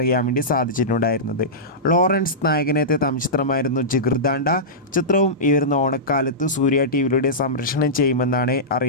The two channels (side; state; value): both; normal; correlation -0.15